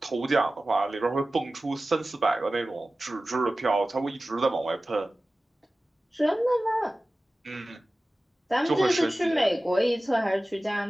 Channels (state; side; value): normal; both; correlation 0.96